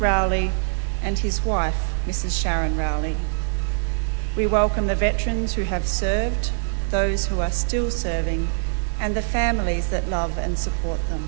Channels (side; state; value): left; silent; 63 dB below the other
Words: Rowley, and his wife, Mrs. Sharon Rowley. We welcome the veterans who have served, those who are still serving, and the families that love and support them.